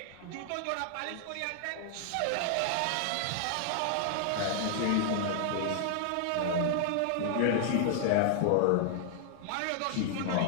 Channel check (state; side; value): different; both; correlation 0.00